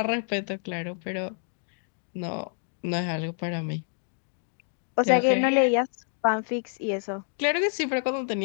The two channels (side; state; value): right; silent; 57 dB below the other